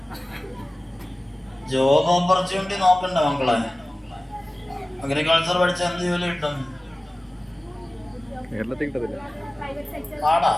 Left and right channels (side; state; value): both; normal; correlation 0.97